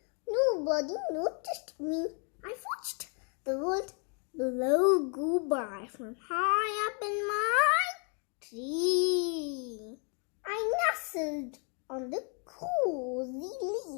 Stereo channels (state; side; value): quieter; right; 39.2 dB